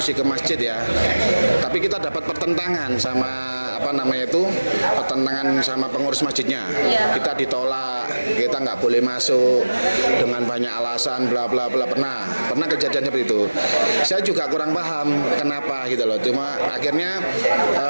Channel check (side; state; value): both; inverted; correlation -1.00